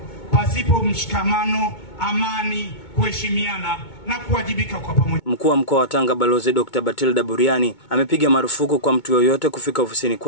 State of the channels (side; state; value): right; late; 2.2 ms